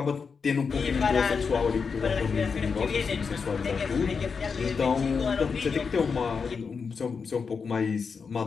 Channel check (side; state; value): right; quieter; 5.5 dB